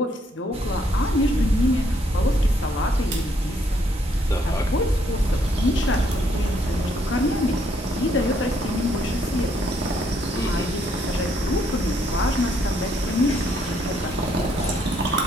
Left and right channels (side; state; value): both; normal; correlation 0.70